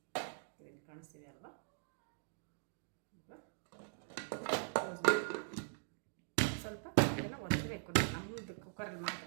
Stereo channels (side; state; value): left; silent; digital silence